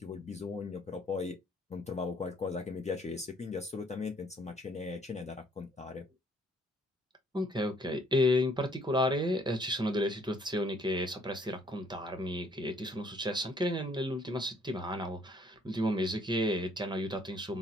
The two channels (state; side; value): normal; both; correlation 0.63